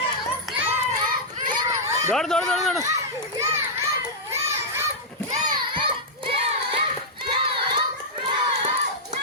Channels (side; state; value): both; normal; correlation -0.08